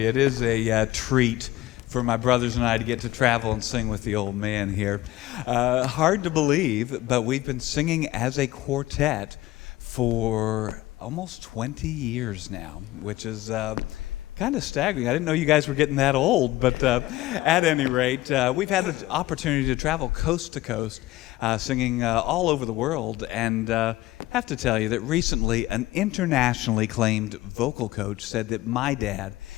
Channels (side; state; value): right; quieter; 17.1 dB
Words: it is a treat for my brothers and I to get to travel and sing with the old man here. Hard to believe, but we've been singing as a quartet for almost 20 years now, which is kind of staggering. I didn't know you guys were getting that old, but at any rate, we've had the opportunity to travel coast to coast, singing all over the world, and have to tell you that recently an internationally acclaimed vocal coach said that my dad